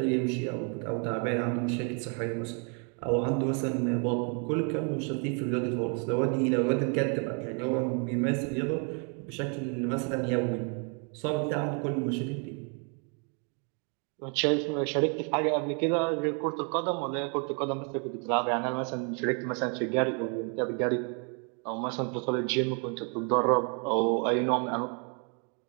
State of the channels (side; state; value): left; quieter; 38.6 dB